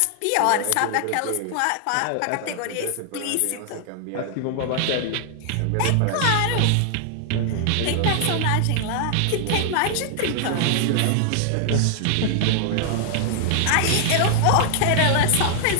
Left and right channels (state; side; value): different; both; correlation 0.00